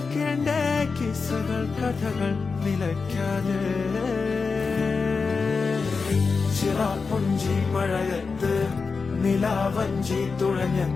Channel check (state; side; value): quieter; right; 4.7 dB